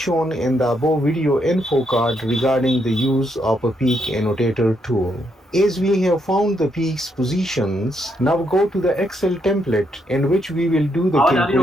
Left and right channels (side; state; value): both; normal; correlation 0.77